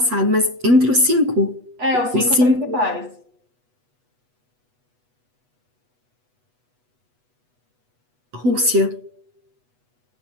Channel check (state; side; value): late; left; 8.1 ms